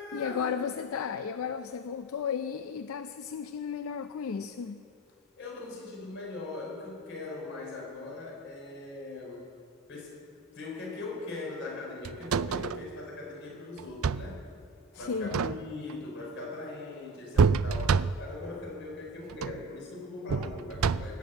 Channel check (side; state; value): both; normal; correlation 0.34